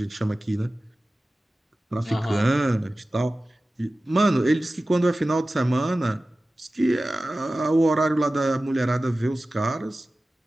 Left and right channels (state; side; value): normal; both; correlation 0.96